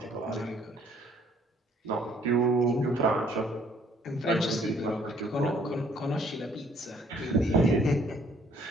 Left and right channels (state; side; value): normal; both; correlation 0.62